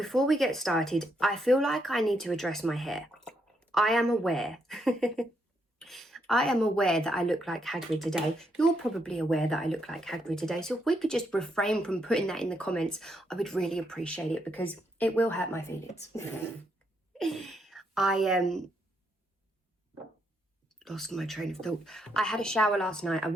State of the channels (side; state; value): both; normal; correlation 0.77